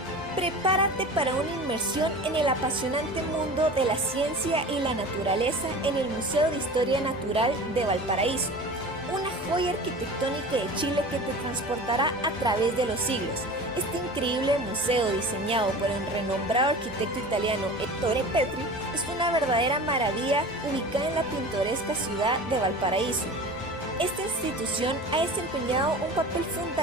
Prepárate para una inmersión en el apasionante mundo de la ciencia y la naturaleza en el Museo de Historia Natural de Valparaíso, una joya arquitectónica de Chile que te transportará a través de los siglos. Este increíble museo, diseñado por el renombrado arquitecto italiano Ettore Petri, es una verdadera maravilla ubicada en la pintoresca ciudad de Valparaíso. Esta institución ha desempeñado un papel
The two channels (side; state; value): both; normal; correlation 0.36